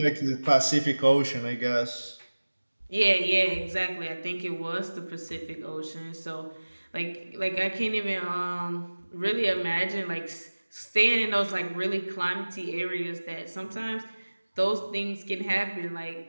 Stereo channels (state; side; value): inverted; both; correlation -1.00